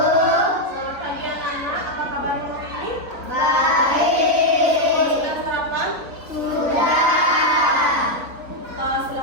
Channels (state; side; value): late; left; 3.6 ms